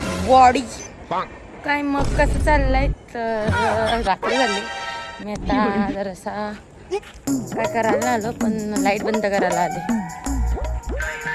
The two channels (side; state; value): both; identical; correlation 1.00